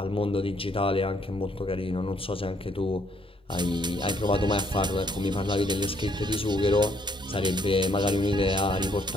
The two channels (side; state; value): both; normal; correlation 0.69